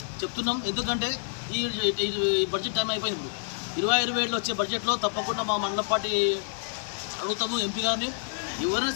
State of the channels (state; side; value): silent; right; digital silence